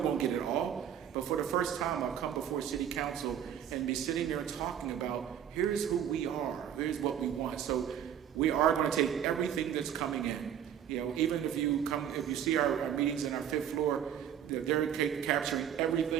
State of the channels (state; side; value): quieter; left; 9.4 dB